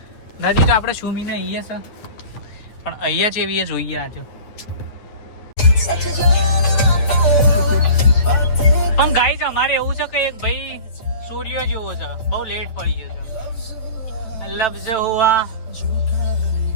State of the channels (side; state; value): right; late; 9.4 ms